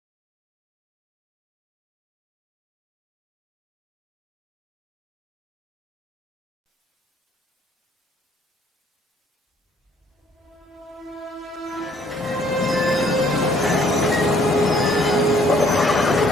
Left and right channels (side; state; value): both; normal; correlation 0.63